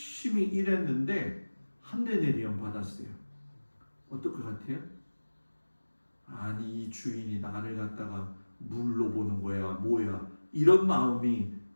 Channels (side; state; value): both; inverted; correlation -1.00